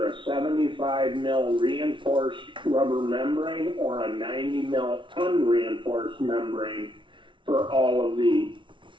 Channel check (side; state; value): left; late; 0.24 ms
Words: a 75 mil reinforced rubber membrane or a 90 mil unreinforced membrane for all of the